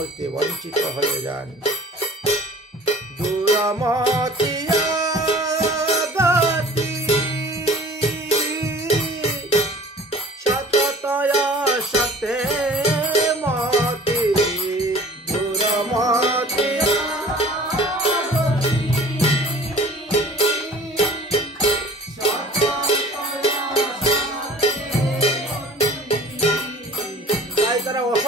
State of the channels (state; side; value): normal; both; correlation 0.47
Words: বঞ্চিত হয়ে যান। দূরমতিয়া গতি সততয়া সতে মতি, দূরমতিয়া